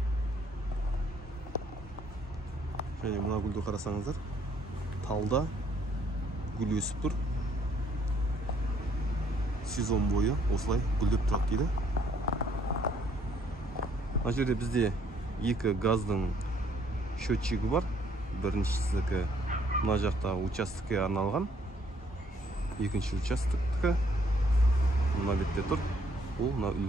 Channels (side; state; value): both; normal; correlation 0.66